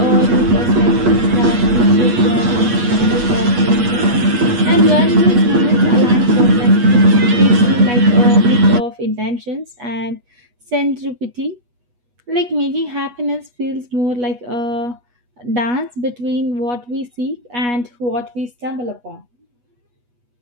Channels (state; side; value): late; left; 8.3 ms